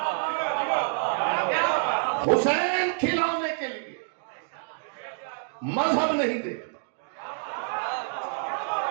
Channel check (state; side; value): silent; left; digital silence